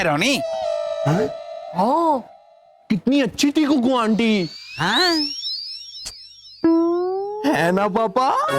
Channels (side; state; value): both; identical; correlation 1.00